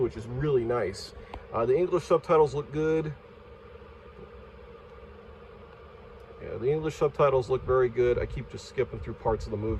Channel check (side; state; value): both; identical; correlation 1.00